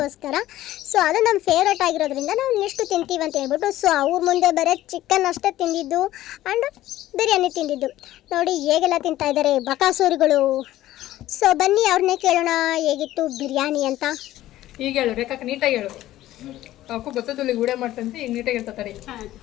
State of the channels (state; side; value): quieter; right; 14.7 dB